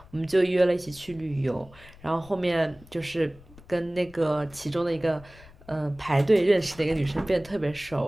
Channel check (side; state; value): left; noise; rumble, 22 dB below the sound